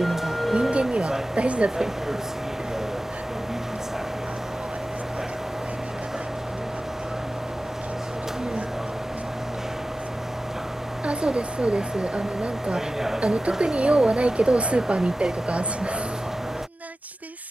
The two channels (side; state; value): both; normal; correlation 0.95